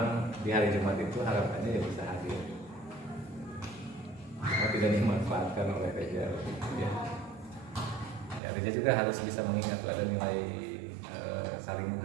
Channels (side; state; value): left; drops out; at 8.4 s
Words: di hari Jumat itu harapannya ya bisa hadir. Karena tidak dimanfaatkan oleh Reja ya. Ya, Reja juga harus bisa mengingat ada nilai saling